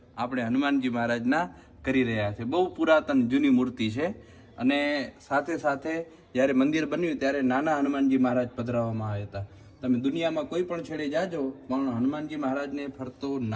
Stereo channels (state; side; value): identical; both; correlation 1.00